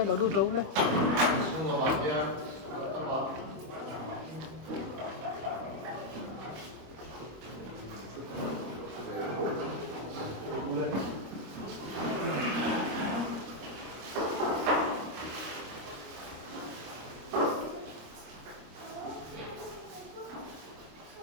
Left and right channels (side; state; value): left; late; 26 ms